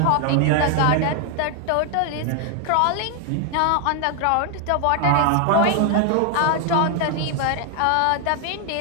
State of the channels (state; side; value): different; both; correlation 0.00